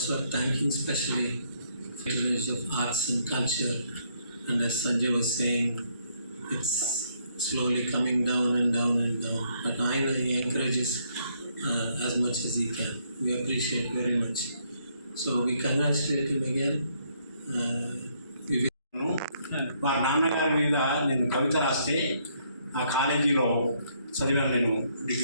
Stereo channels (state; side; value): inverted; both; correlation -0.71